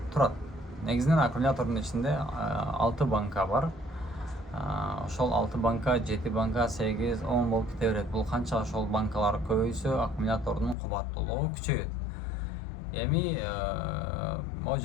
турат. Негизинен аккумулятордун ичинде 6 банка бар. Ошол 6 банка, 7 банка, 8, 10 болуп кете берет. Бул канча ошол банкалар көбөйсө, аккумулятордун кубаттуулугу күчөйөт. Эми могу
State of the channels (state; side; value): drops out; right; at 10.8 s